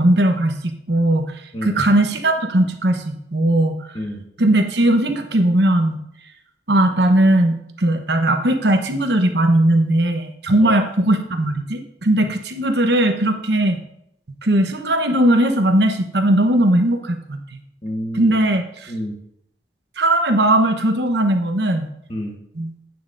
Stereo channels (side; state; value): both; normal; correlation 0.64